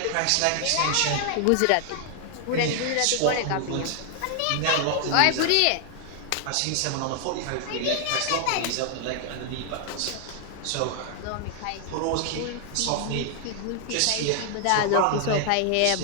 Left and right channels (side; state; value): both; different; correlation 0.00